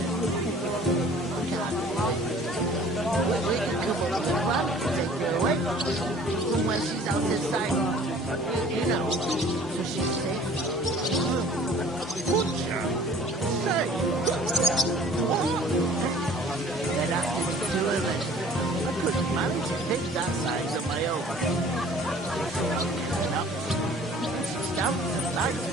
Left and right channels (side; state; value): both; normal; correlation 0.50